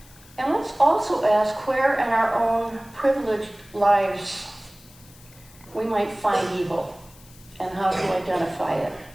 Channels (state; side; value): noise; left; hiss, 24 dB below the sound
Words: And let's also ask where in our own privileged lives we might find evil and how to identify it.